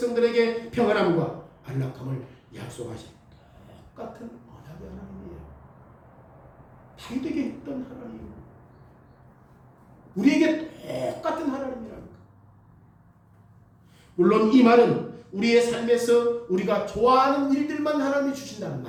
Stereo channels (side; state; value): both; identical; correlation 1.00